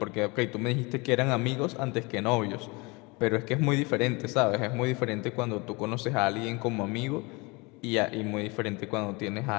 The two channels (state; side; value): quieter; right; 26.8 dB